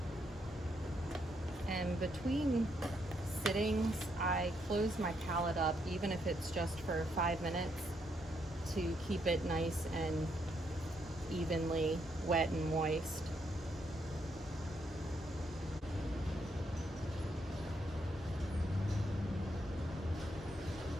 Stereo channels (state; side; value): normal; both; correlation 0.76